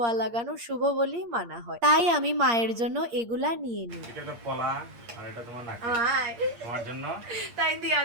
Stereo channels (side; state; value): left; late; 8.6 ms